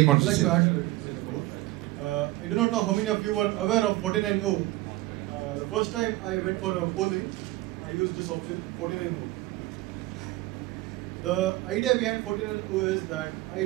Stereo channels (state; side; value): quieter; left; 18.3 dB